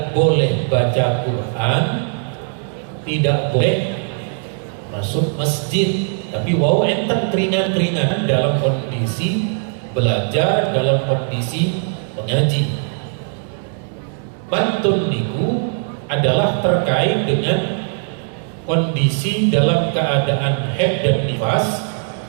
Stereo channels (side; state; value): left; silent; 61 dB below the other